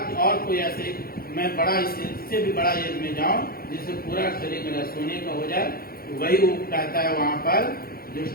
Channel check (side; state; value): right; late; 0.43 ms